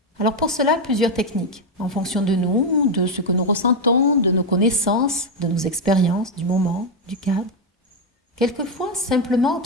Alors pour cela, plusieurs techniques, en fonction de nous, de ce que nous ressentons, de nos connaissances, de nos expériences, du moment, du cadre. Quelquefois, simplement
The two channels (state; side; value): normal; both; correlation 0.05